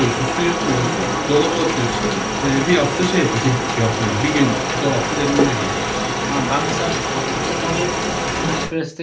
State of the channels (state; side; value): identical; both; correlation 1.00